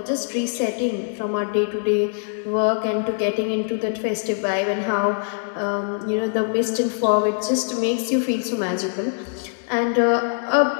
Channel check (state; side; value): silent; right; digital silence